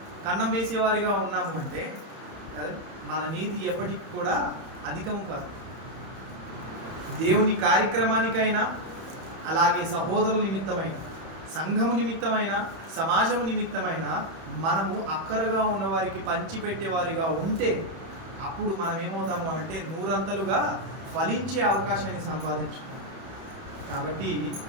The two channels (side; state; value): left; late; 31 ms